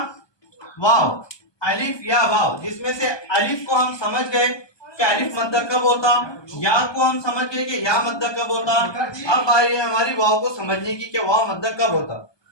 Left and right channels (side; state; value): right; late; 1.2 ms